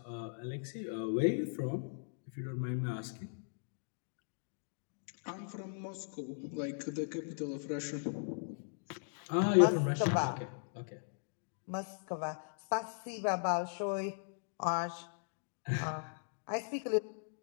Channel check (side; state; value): right; silent; digital silence